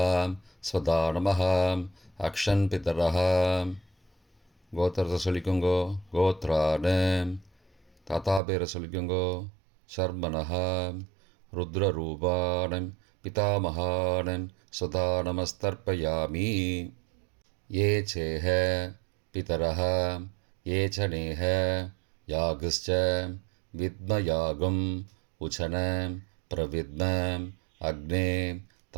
स्वदा नमः. अक्षन् पितरः. கோத்திரத்தை சொல்லிக்கோங்கோ. கோத்ரானு தாத்தா பேரை சொல்லிக்கோங்கோ. சர்மனஹா ருத்ரரூபான் பிதாமகான் ஸ்வதா நமஸ்தர்ப்பயாமி. ये चेह पितरः ये च नेह यागश्च विद्मयागम् उचन प्रविद्म अग्ने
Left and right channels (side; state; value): left; drops out; at 8.4 s